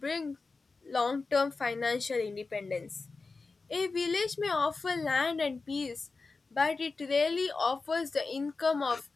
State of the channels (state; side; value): quieter; right; 4.0 dB